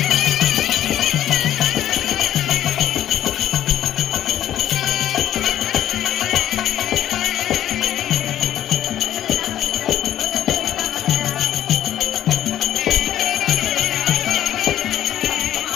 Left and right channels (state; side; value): quieter; right; 11.7 dB